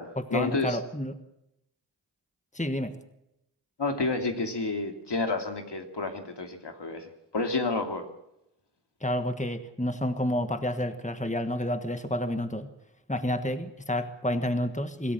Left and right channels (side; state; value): both; normal; correlation 0.32